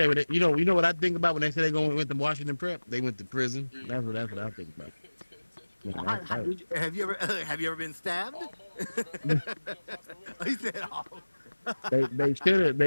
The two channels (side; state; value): both; inverted; correlation -1.00